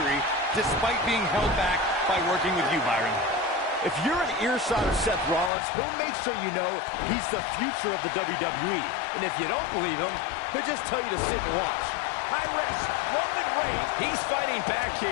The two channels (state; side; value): drops out; right; at 5.5 s